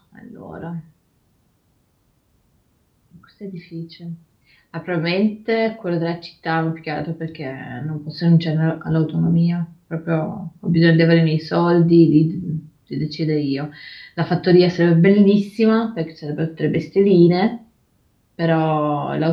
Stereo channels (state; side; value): identical; both; correlation 1.00